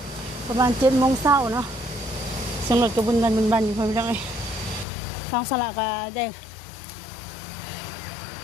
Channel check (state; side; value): drops out; right; at 4.9 s